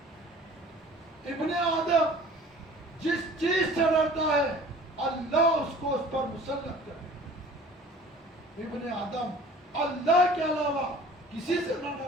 ابن آدم جس چیز سے ڈرتا ہے اللہ اس کو اس پر مسلط کرے. ابن آدم اللہ کے علاوہ کسی سے نہ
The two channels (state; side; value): normal; both; correlation 0.47